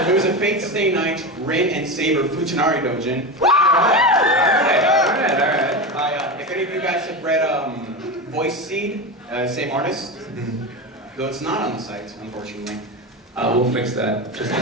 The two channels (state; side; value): normal; both; correlation 0.21